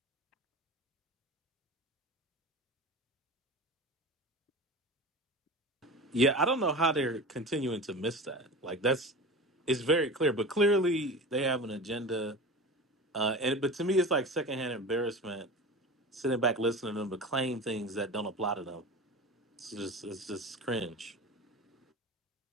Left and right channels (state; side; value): normal; both; correlation 0.31